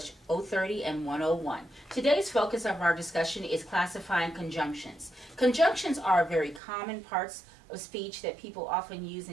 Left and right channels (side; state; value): left; drops out; at 6.6 s